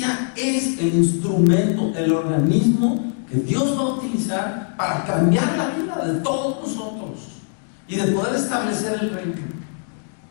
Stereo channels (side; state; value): right; silent; digital silence